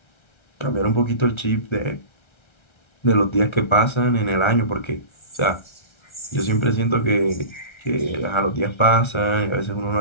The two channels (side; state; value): right; late; 1.3 ms